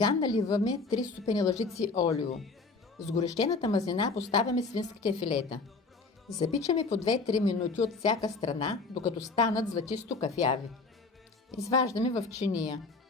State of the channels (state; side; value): quieter; right; 4.0 dB